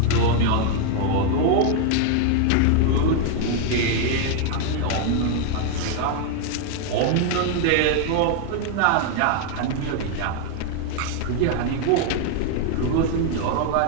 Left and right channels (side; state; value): both; different; correlation 0.00